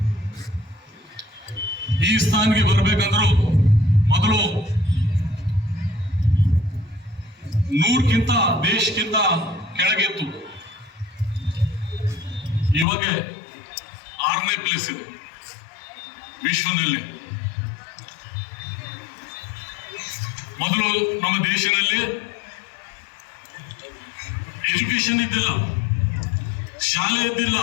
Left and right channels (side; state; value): right; drops out; at 12.9 s